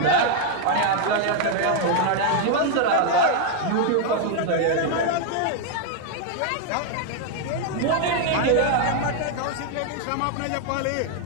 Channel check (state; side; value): different; both; correlation 0.00